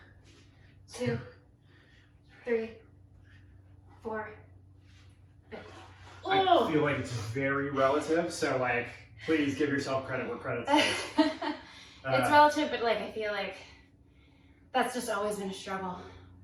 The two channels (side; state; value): both; identical; correlation 1.00